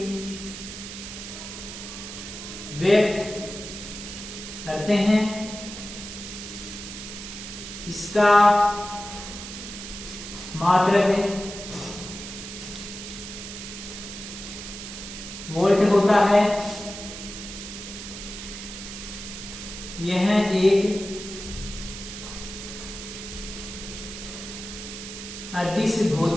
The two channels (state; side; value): noise; right; hiss, 10 dB below the sound